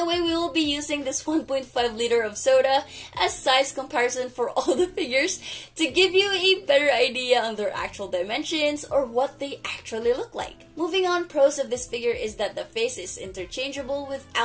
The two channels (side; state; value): both; identical; correlation 1.00